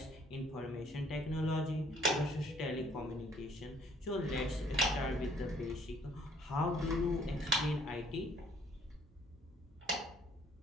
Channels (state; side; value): normal; both; correlation 0.61